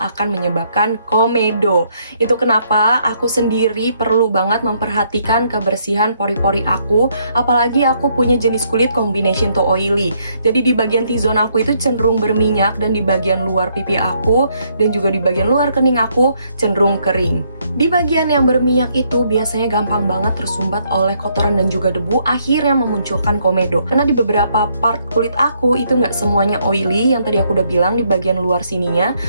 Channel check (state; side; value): inverted; both; correlation -0.71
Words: menyebabkan komedo. Itu kenapa aku sendiri perlu banget memperhatikan kebersihan pori-pori aku, apalagi aku punya jenis kulit combination to oily. Jadi di bagian T-zone aku itu cenderung berminyak, dan di bagian luar pipi aku dan juga di bagian luar kening aku cenderung kering. Di bagian yang berminyak itu biasanya gampang banget tersumbat oleh kotoran dan juga debu, akhirnya memunculkan komedo. Karena di beberapa part kulit aku itu nggak semuanya oily, yang tadi aku udah bilang di bagian luar sininya